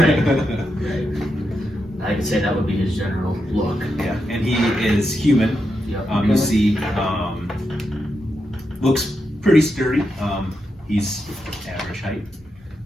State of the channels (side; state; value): both; normal; correlation 0.85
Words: I could say that would be his general look. Yeah, and he is human. Yep. You see, looks pretty sturdy. He's average height.